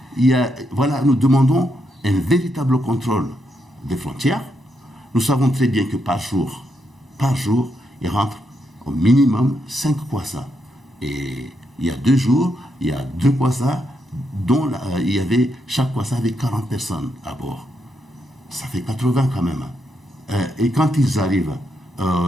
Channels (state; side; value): normal; both; correlation 0.80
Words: Voilà, nous demandons un véritable contrôle des frontières. Nous savons très bien que par jour, il rentre au minimum 5 Kwassa. Et il y a 2 jours, il y a 2 Kwassa dont chaque Kwassa avait 40 personnes à bord. Ça fait 80 quand même. Et quand ils arrivent,